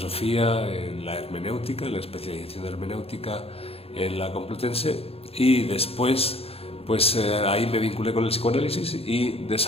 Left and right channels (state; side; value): late; right; 0.28 ms